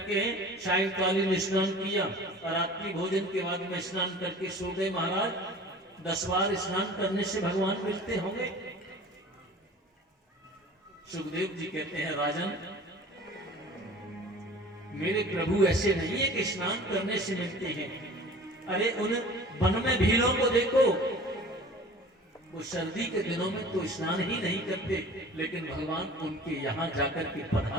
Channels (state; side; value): normal; both; correlation 0.43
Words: के सायंकालीन स्नान किया और रात्रि भोजन के बाद में स्नान करके सो गए। महाराज 10 बार स्नान करने से भगवान मिलते होंगे। सुखदेव जी कहते हैं, राजन मेरे प्रभु ऐसे नहीं है कि स्नान करने से मिलते हैं। अरे उन वन में भीलों को देखो, वो सर्दी के दिनों में तो स्नान ही नहीं करते, लेकिन भगवान उनके यहाँ जाकर के